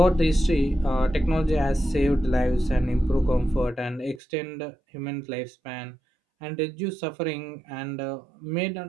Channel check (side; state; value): left; drops out; at 4.2 s